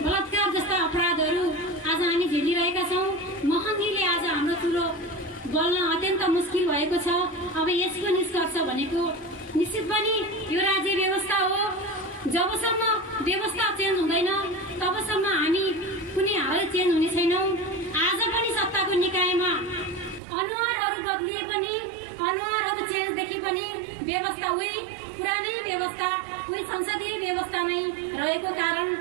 बलात्कार जस्ता अपराधहरू आज हामी झेलिरहेका छौँ। महँगीले आज हाम्रो चुलो बल्न अत्यन्त मुस्किल भएको छ। अब यसको निष्कर्ष भनेको निश्चित पनि यो राज्य व्यवस्था हो। जबसम्म व्यवस्था चेन्ज हुँदैन तबसम्म हामी कुनै हालै चेन्ज हुने छैनौं। आज पनि सत्ताको निकायमा अनुहारहरू बदलिए पनि अनुहारहरू चेन्ज देखि पनि व्यवस्था उही पुरानै व्यवस्था उही संसदीय व्यवस्था नै रहेको कारण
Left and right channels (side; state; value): left; drops out; at 20.2 s